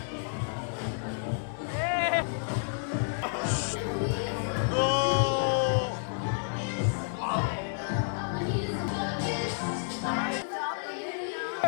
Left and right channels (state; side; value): silent; right; digital silence